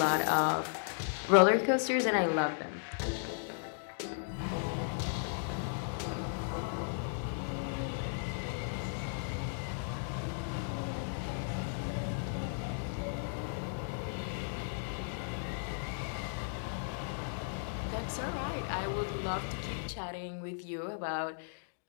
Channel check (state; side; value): silent; right; digital silence